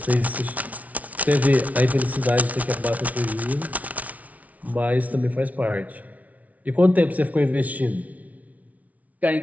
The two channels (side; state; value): left; late; 0.070 ms